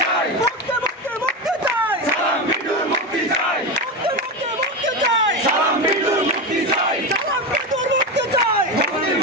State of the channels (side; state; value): both; normal; correlation 0.16